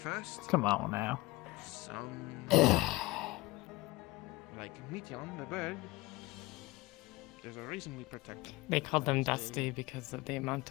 Come on now. some like Meteon, the bird. There's a reason we protect them. They called them Dusty because of the amount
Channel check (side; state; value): right; quieter; 21.2 dB